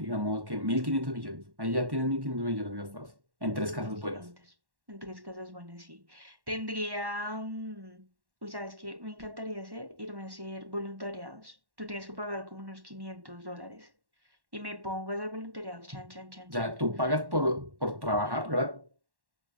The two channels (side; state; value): left; late; 1.1 ms